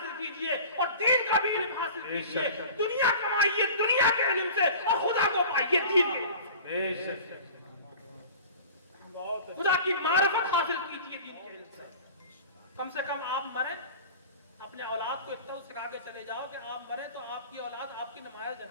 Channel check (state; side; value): inverted; both; correlation -0.40